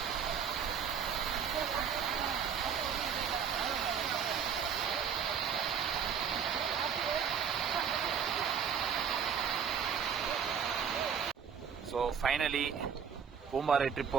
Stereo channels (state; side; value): quieter; left; 7.3 dB